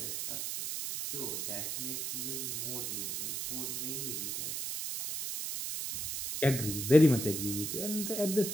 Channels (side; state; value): right; noise; hiss, 3 dB below the sound